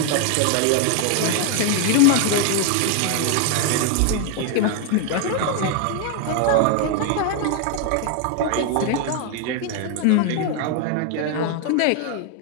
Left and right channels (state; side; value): different; both; correlation 0.01